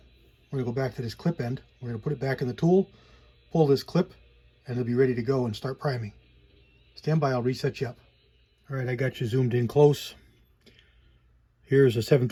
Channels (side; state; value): both; identical; correlation 1.00